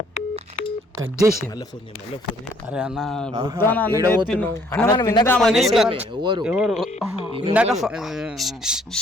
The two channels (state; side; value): normal; both; correlation 0.63